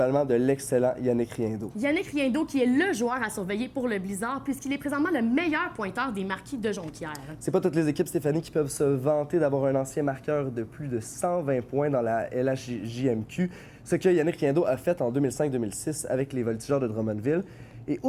de l'excellent Yannick Riendeau. Yannick Riendeau qui est le joueur à surveiller pour le Blizzard puisqu'il est présentement le meilleur pointeur des Marquis de Jonquière. C'est pas toutes les équipes, Stéphanie, qui peuvent se vanter d'avoir un ancien marqueur de plus de 120 points dans la LHJMQ, ce que Yannick Riendeau a fait en 2005-2006 avec les Voltigeurs de Drummondville. Et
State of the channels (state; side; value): identical; both; correlation 1.00